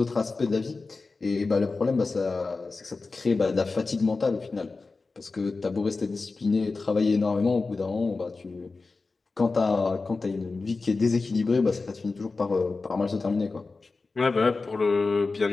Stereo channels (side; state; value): right; quieter; 3.9 dB